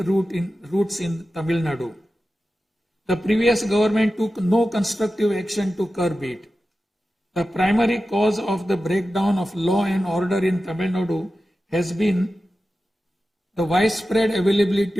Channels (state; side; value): normal; both; correlation 0.93